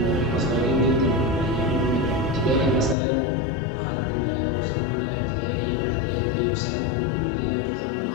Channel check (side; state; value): right; drops out; at 3.0 s